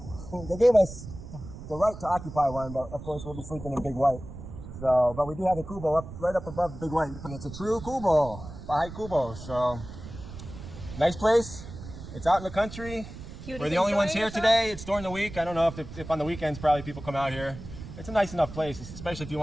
They gave us the right to occupy one, but of course we'll be sleeping in Big White. So, but we do have a kubo right up above Big White. And it's a true kubo, Bahay kubo. So, nice place. It's out in the country. We're the only ones here today. It's during the week. I don't know if on the weekends probably people come out here. It's a nice enough place, especially if you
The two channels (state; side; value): noise; right; rumble, 12 dB below the sound